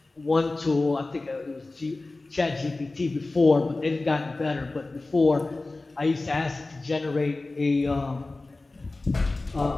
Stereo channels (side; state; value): right; quieter; 3.2 dB